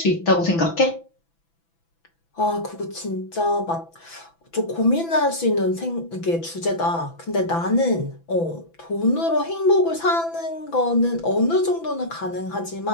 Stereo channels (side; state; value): right; late; 6.0 ms